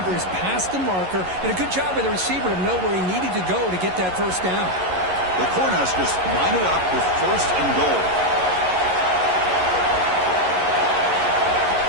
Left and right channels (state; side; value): late; left; 11 ms